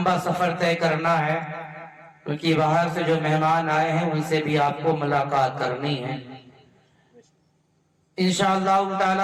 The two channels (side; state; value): both; identical; correlation 1.00